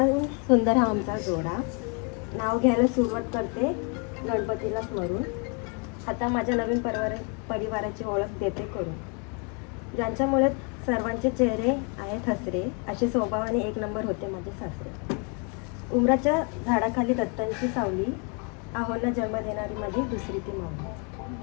सुंदर हा आमचा जोडा. नाव घ्यायला सुरुवात करते गणपतीला स्मरून. आता माझ्या नवीन परिवाराची ओळख देते करून. ज्यांच्यामुळे सर्वांचे चेहरे आहेत हसरे. असे स्वभावाने 1 नंबर होते माझे सासरे. उमराच्या झाडाखाली दत्तांची सावली. आहोंना जन्म देणारी माझी दुसरी ती मावली.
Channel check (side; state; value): right; quieter; 35.5 dB